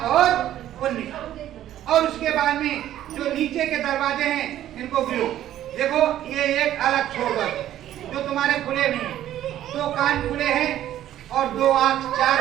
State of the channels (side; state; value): left; quieter; 12.3 dB